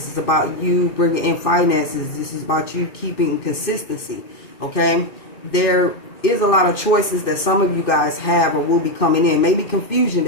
is about you bringing in finances, this is about you keeping consistency, okay? There is a lot of choices that some of you guys have or will be coming in, maybe confusion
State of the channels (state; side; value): late; right; 2.6 ms